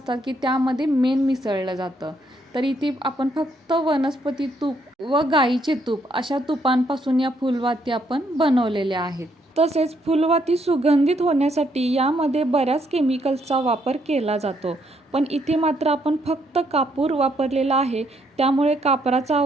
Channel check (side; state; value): both; normal; correlation 0.72